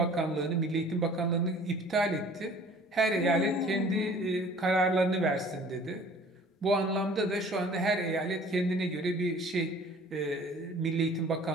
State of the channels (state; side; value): normal; both; correlation 0.50